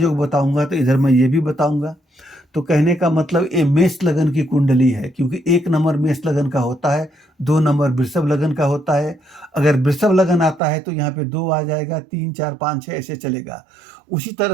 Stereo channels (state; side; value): drops out; left; at 10.6 s